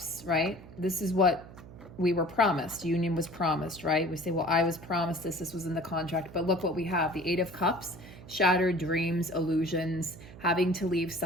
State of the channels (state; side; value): noise; right; hum, 17 dB below the sound